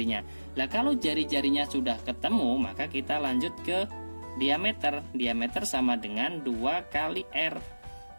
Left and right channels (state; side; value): inverted; both; correlation -1.00